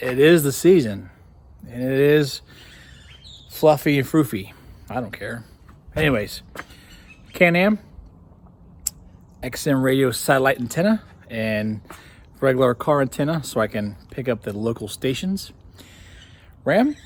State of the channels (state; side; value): identical; both; correlation 1.00